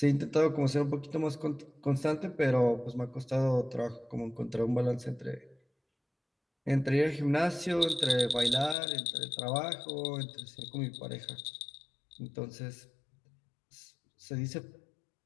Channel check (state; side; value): drops out; right; at 8.8 s